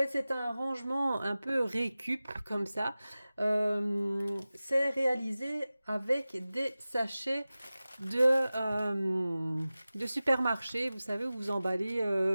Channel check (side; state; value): both; inverted; correlation -0.97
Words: c'est un rangement un peu récup comme ça. C'est réalisé avec des sachets de, de supermarché, vous savez, où vous emballez